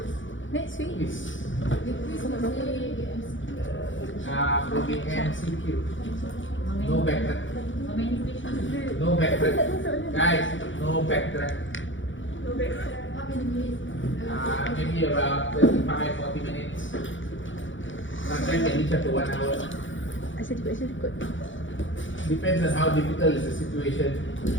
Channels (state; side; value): late; right; 0.56 ms